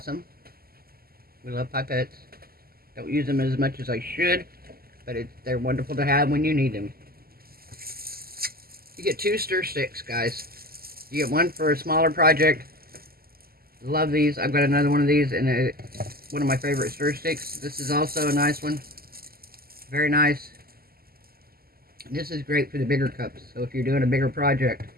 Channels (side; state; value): left; late; 0.44 ms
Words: We love pipettes. Don't use them as much as I should, but they're wonderful to have when you need them. You get 2 stir sticks, guys. You get one for a smaller project. Love these. I've got another one of these, and one of my favorite stir sticks. This is also a nice one. Very nice. This is great for the bigger cups. So if you're doing a bigger project